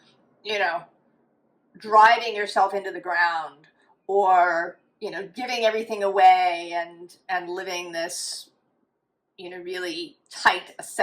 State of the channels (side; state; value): both; identical; correlation 1.00